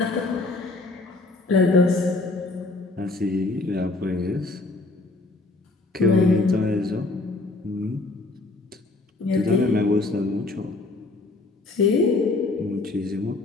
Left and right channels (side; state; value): right; quieter; 3.2 dB